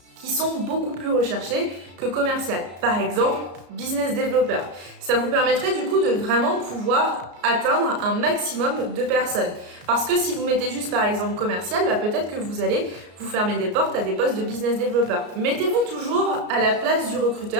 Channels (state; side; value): late; left; 33 ms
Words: qui sont beaucoup plus recherchés que commercial. Par exemple, business developer. Ça vous permettrait du coup de vraiment pouvoir atteindre un maximum de personnes. Parce que si vous mettez juste par exemple commercial, peut-être que vous allez vous fermer des portes à des postes de business developer. Mettez-vous toujours à la place du